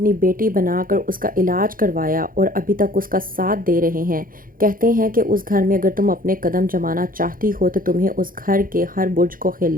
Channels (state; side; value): late; left; 0.41 ms